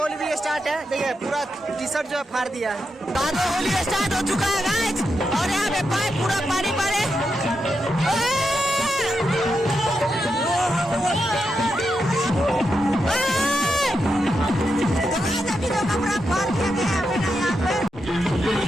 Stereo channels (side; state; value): both; normal; correlation 0.85